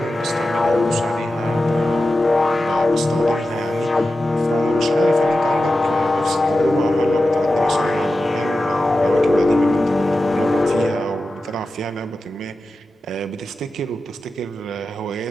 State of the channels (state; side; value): normal; both; correlation 0.93